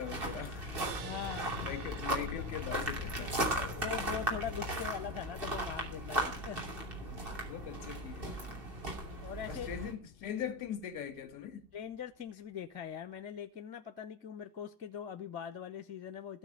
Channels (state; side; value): late; left; 2.7 ms